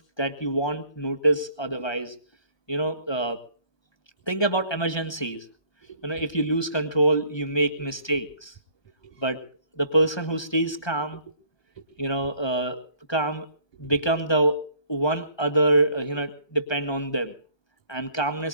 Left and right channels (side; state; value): right; late; 1.2 ms